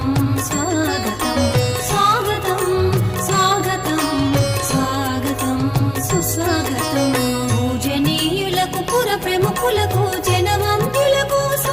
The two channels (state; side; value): noise; left; hum, 20 dB below the sound